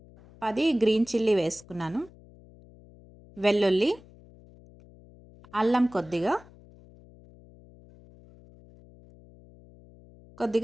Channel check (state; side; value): noise; left; hum, 24 dB below the sound